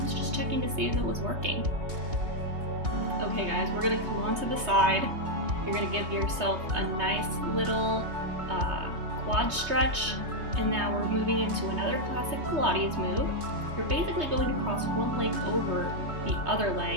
was just checking to see if it was working. Okay guys, we're going to come onto the side. You're going to give yourself a nice little quad stretch. And now we're moving into another classic Pilates move. You're basically going to cross one leg over the other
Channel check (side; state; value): left; late; 3.2 ms